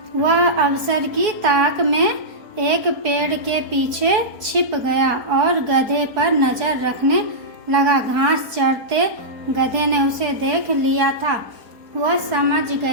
वह अवसर की ताक में एक पेड़ के पीछे छिप गया और गधे पर नजर रखने लगा। घास चरते गधे ने उसे देख लिया था। वह समझ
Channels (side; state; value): left; late; 4.3 ms